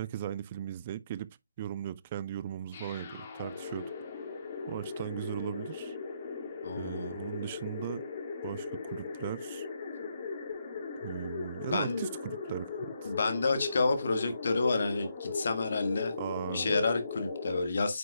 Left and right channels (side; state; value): both; inverted; correlation -0.77